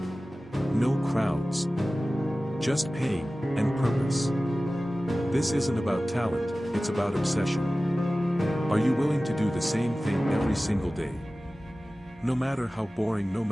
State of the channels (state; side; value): normal; both; correlation 0.96